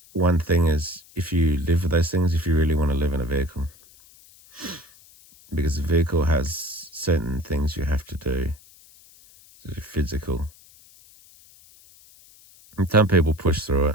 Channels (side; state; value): left; noise; hiss, 25 dB below the sound